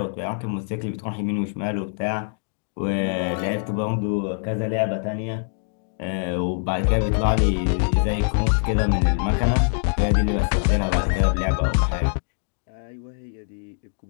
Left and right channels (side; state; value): right; silent; digital silence